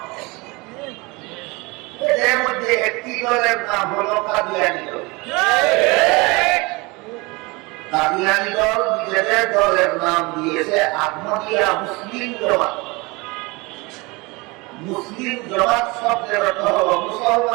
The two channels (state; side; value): quieter; left; 25.3 dB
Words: এদের মধ্যে একটি দলের নাম হলো কাদিয়ানী দল। কাদিয়ানী দল নিজেদের দলের নাম দিয়েছে আহমদিয়া মুসলিম জমাত। মুসলিম জমাত শব্দের অর্থ হল